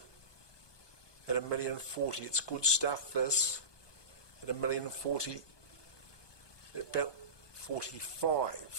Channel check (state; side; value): late; right; 1.2 ms